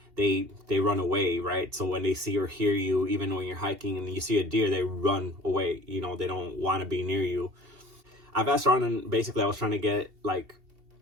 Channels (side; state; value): left; late; 2.7 ms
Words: They run away, right? So when they see or hear you, even when you're hiking and you see a deer, they run away. They don't want to be near you. I've asked around, and basically I was trying to get like